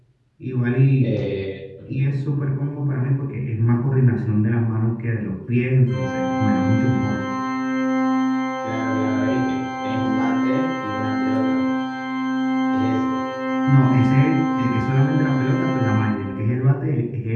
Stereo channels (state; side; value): identical; both; correlation 1.00